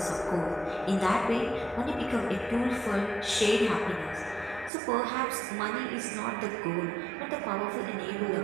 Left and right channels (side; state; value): left; drops out; at 4.7 s